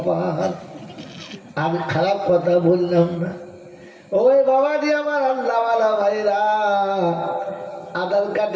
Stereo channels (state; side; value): identical; both; correlation 1.00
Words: আমি খারাপ কথা বললাম না। ওই বাবাজি আমার আল্লাহওয়ালা ভাইরা, আধার